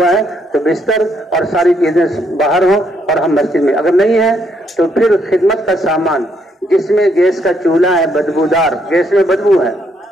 ہے تو بستر اور ساری چیزیں باہر ہوں اور ہم مسجد میں، اگر نہیں ہے تو پھر خدمت کا سامان جس میں گیس کا چولہا ہے بدبودار، گیس میں بدبو ہے،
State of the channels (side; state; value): both; normal; correlation 0.74